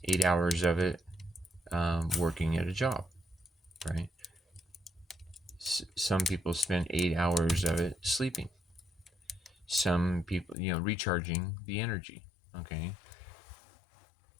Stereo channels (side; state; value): right; drops out; at 10.6 s